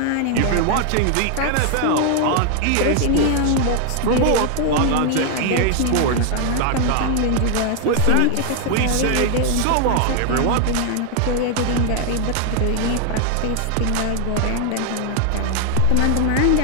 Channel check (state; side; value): different; both; correlation 0.00